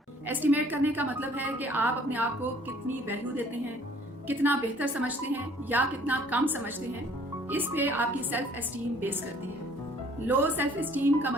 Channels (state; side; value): normal; both; correlation 0.57